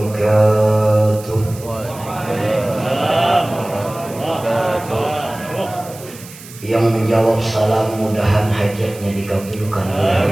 Yang menjawab salam mudahan hajatnya dikabulkan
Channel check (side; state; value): right; noise; hiss, 18 dB below the sound